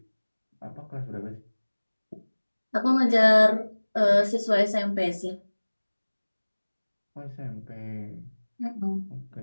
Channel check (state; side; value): inverted; both; correlation -1.00